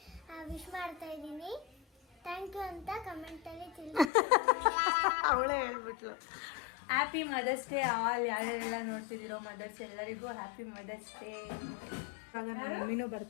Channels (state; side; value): drops out; right; at 4.1 s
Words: ವಿಶ್ ಮಾಡ್ತಾ ಇದ್ದೀನಿ. ಥ್ಯಾಂಕ್ ಯು ಅಂತ ಕಮೆಂಟಲ್ಲಿ ತಿಳಿಸಿ. ಅವಳೇ ಹೇಳ್ಬಿಟ್ಲು. Happy mother's day all. ಯಾರ್ಯಾರೆಲ್ಲ ನೋಡ್ತಿದ್ದೀರೋ ಮದರ್ಸ್ ಎಲ್ಲರಿಗೂ ಹ್ಯಾಪಿ ಮದರ್ಸ್ ಡೇ. ಇವಾಗ ನನ್ನ ಮಮ್ಮಿನೂ